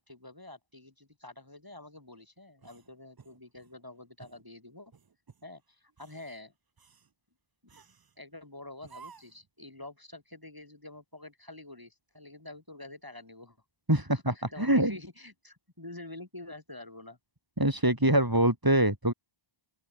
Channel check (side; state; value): left; late; 1.0 ms